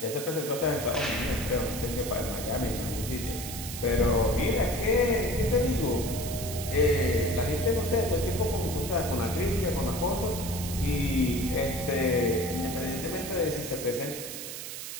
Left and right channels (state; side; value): noise; right; hiss, 8 dB below the sound